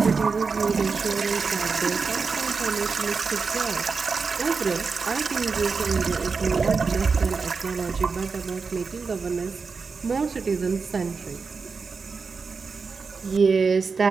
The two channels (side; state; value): left; quieter; 4.9 dB